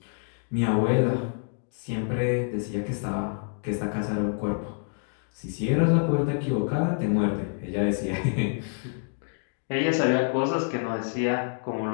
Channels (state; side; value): silent; right; 60 dB below the other